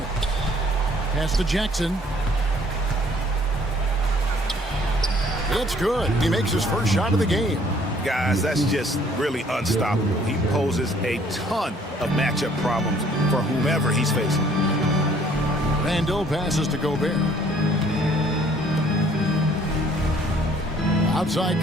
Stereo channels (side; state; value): both; normal; correlation 0.60